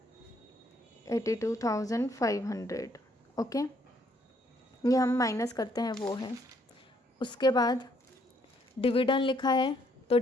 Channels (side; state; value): both; normal; correlation 0.68